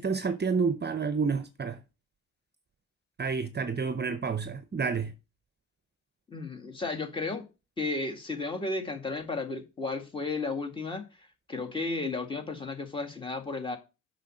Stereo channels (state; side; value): normal; both; correlation 0.42